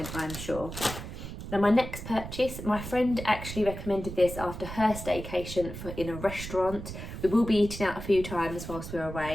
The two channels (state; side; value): noise; right; rumble, 9 dB below the sound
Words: I'm sure. Now my next purchase, my friend actually recommended this after her staycation in a restaurant. We will be eating out a few times whilst we're